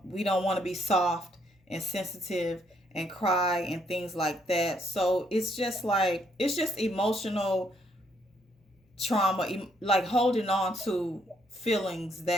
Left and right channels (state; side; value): normal; both; correlation 0.71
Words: We don't want to be soft and sensitive and cry and things like that. So it's just emotional trauma, like holding on to feelings